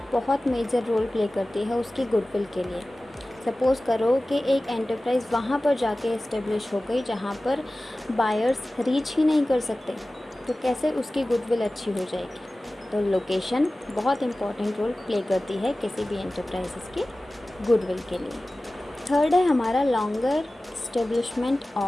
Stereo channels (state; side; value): normal; both; correlation 0.97